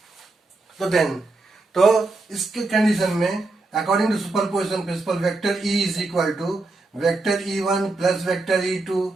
तो देन तो इसके कंडीशन में according to superposition principle vector E is equal to vector E1 plus vector E2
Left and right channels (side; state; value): left; quieter; 3.2 dB